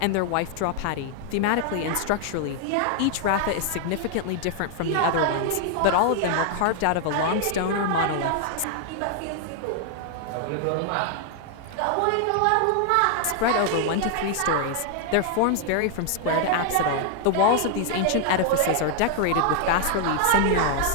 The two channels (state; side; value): different; both; correlation 0.00